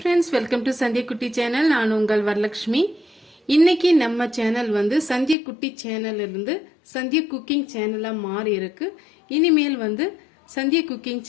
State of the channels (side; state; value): right; drops out; at 5.4 s